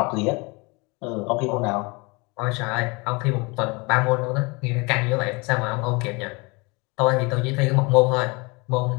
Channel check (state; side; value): quieter; right; 27.7 dB